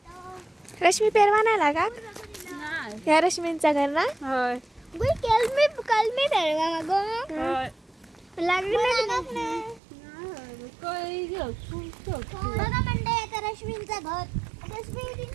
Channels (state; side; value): drops out; left; at 9.8 s